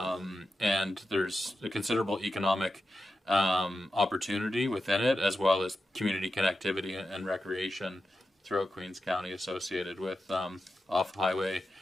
there's a considerable economic opportunity within it, as well as community connectivity and recreation throughout Queens County associated with off-highway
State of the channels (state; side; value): normal; both; correlation 0.90